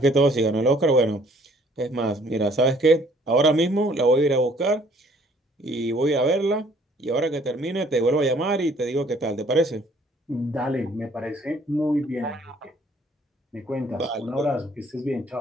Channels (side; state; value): both; normal; correlation 0.59